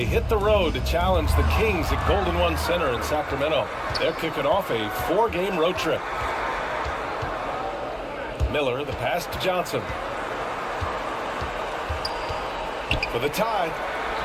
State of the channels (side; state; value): both; identical; correlation 1.00